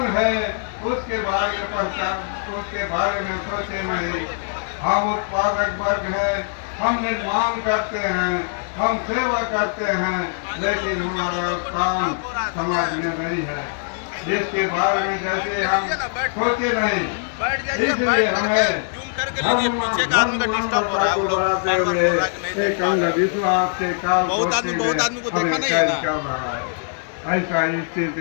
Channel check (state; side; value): silent; right; digital silence